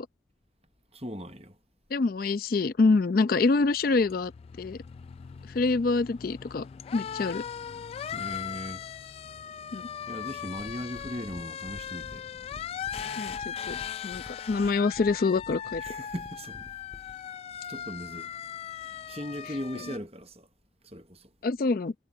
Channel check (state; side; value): quieter; right; 3.5 dB